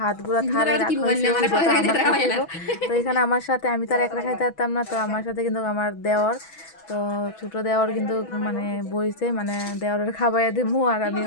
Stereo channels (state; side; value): late; right; 6.1 ms